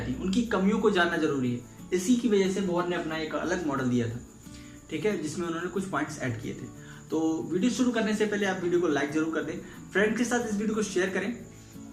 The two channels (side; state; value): both; identical; correlation 1.00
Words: उनकी कमियों को जानना जरूरी है। इसी की वजह से बोहर ने अपना एक अलग मॉडल दिया था, ठीक है, जिसमें उन्होंने कुछ पॉइंट्स ऐड किए थे। तो वीडियो शुरू करने से पहले आप वीडियो को लाइक जरूर कर दें, फ्रेंड के साथ इस वीडियो को शेयर करें